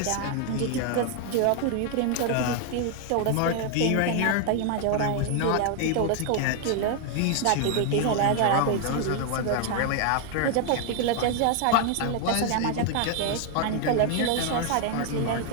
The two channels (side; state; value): both; different; correlation 0.00